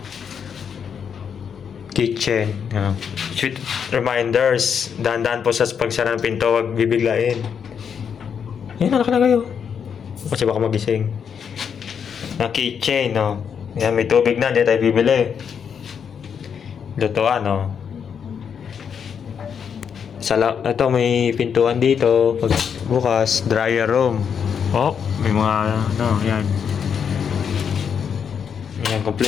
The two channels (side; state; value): right; quieter; 7.3 dB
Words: kitchen. Sweet reminders. Dahan-dahan po sa pagsara ng pinto, wag bibiglain. Yan, anak na kayo. Kasi baka magising. Na kitchen, no. Yan, may tubig na, hindi tayo bibili. Lutuan, no. Ito, may pintuan dito. Pag bukas, dryer room. Oh, may mga, ano, yan. Yan,